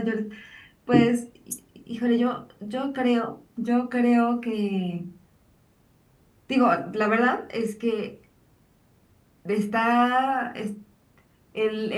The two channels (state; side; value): identical; both; correlation 1.00